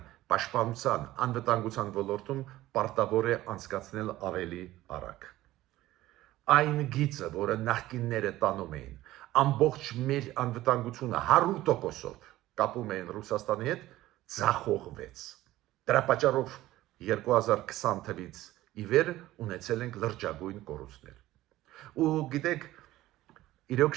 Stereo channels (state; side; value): quieter; left; 16.0 dB